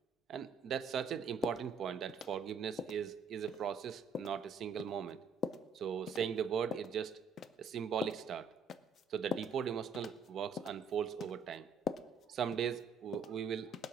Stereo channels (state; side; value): quieter; left; 4.8 dB